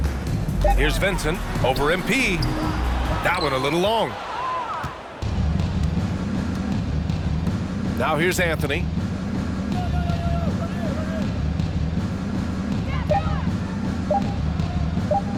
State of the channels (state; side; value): identical; both; correlation 1.00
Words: Here's Vincent, over MP. That one a little long. Now here's Anthony.